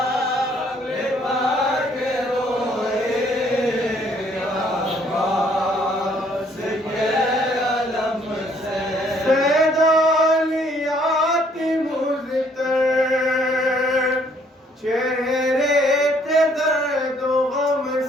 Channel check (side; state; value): both; normal; correlation 0.64